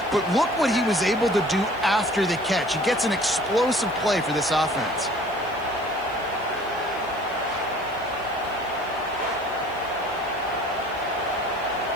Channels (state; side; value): noise; right; hiss, 26 dB below the sound